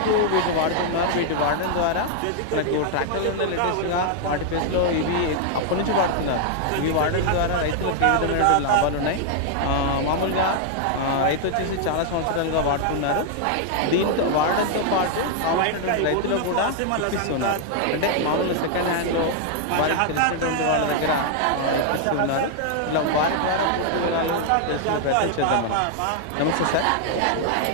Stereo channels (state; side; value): different; both; correlation 0.00